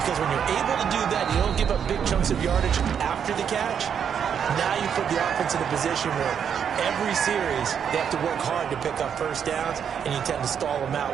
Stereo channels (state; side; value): quieter; left; 7.9 dB